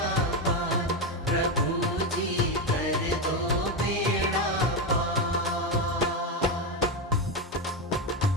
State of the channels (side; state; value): both; normal; correlation 0.11